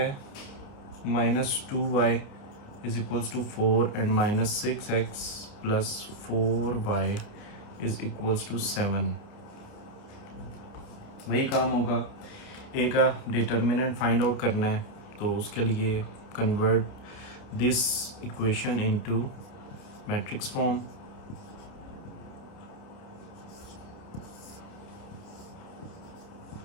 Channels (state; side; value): late; right; 29 ms